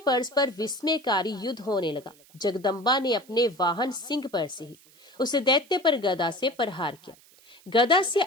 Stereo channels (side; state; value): right; noise; hiss, 27 dB below the sound